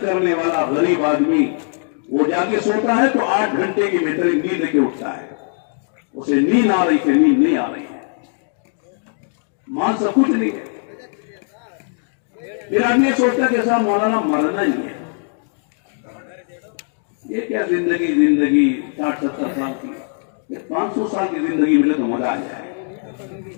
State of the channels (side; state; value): right; silent; 57 dB below the other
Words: کرنے والا غریب آدمی وہ جا کے سوتا ہے تو 8 گھنٹے کی بہترین نیند لے کے اٹھتا ہے. اسے نیند آ رہی تھی, نیند نہیں آ رہی ہے, مال سب کچھ نہیں ہے. پھر آدمی سوچتا کہ صاحب مولانا مرنا ہی ہے, یہ کیا زندگی 60-70 سال کی, 500 سال کی زندگی ملے تو مزہ آ جائے.